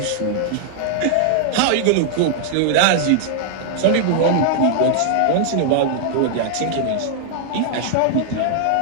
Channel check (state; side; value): different; both; correlation -0.01